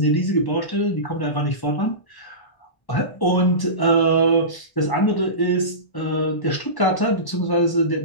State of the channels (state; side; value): late; right; 1.1 ms